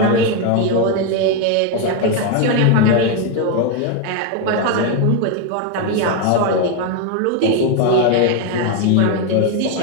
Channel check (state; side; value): different; both; correlation 0.02